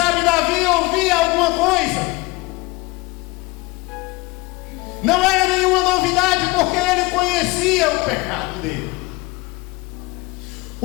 Davi ouvia alguma coisa. Não era nenhuma novidade, porque ele conhecia o pecado dele.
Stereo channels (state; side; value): quieter; right; 23.4 dB